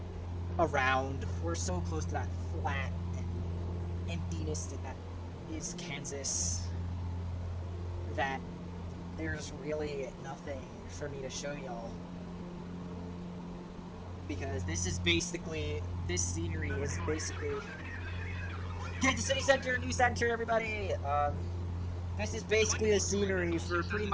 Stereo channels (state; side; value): identical; both; correlation 1.00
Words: around. We're so close to that flat and emptiness that is Kansas that there's really nothing for me to show y'all. Because this scenery is basically Kansas City Center, new center, everybody. This is basically the scenery for pretty